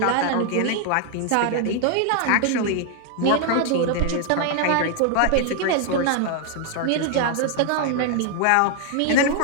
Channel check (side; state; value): both; different; correlation 0.00